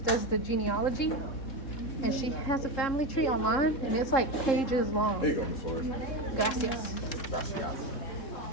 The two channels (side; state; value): right; late; 3.7 ms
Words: the genealogy, and she has a family tree online, and it's like pages long. there you go, Miss Flores. Gracias.